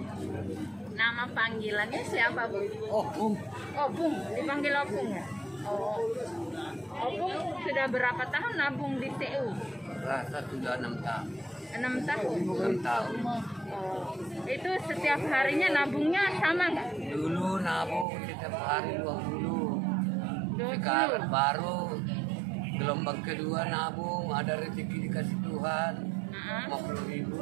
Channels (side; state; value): left; drops out; at 18.1 s